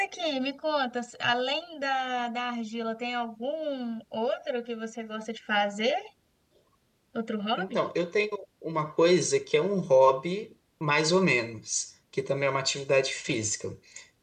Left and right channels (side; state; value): both; identical; correlation 1.00